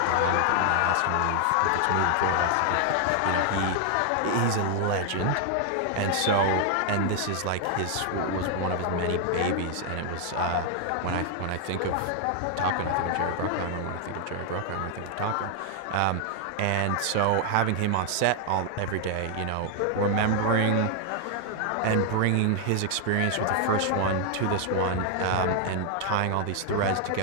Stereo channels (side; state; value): both; different; correlation 0.00